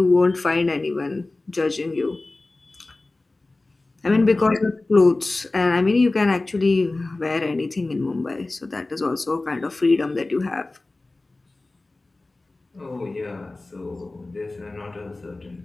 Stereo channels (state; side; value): quieter; right; 3.1 dB